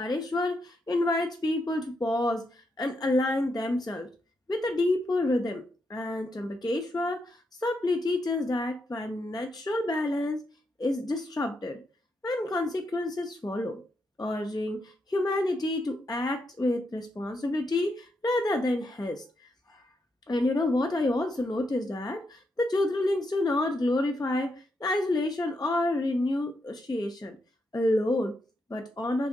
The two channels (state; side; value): normal; both; correlation 0.82